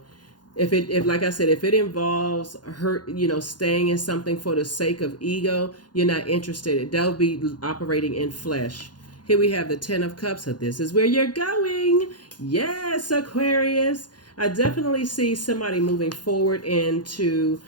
if like I said, if it involves staying in something for the sake of ego, you're not interested. That would be operating in flesh. Here we have the 10 of Cups. So this is where you're going. Yes, Aquarius. I definitely see somebody moving forward into,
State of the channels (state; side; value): late; right; 0.70 ms